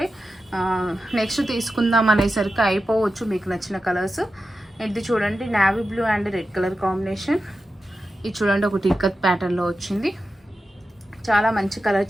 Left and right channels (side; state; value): both; normal; correlation 0.91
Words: నెక్స్ట్ తీసుకుందాం అనేసరికి అయిపోవచ్చు మీకు నచ్చిన కలర్స్. ఇది చూడండి navy blue and red colour combination. ఇది చూడండి ఒకటి ఇక్కత్ ప్యాటర్న్లో వచ్చింది. చాలా మంచి కలర్